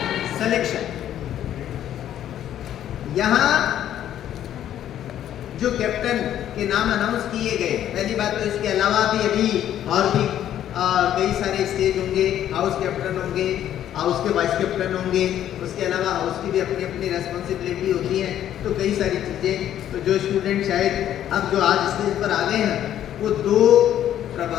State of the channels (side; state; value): right; quieter; 11.2 dB